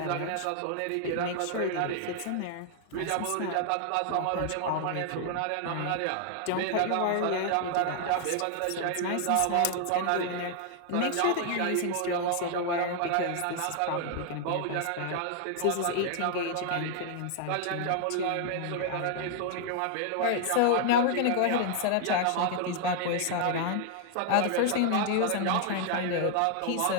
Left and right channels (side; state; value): both; different; correlation 0.00